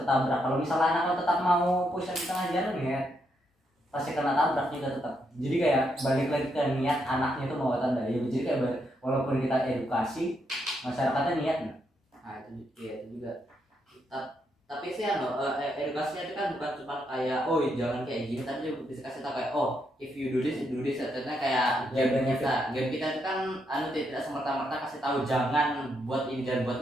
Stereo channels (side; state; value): both; normal; correlation 0.79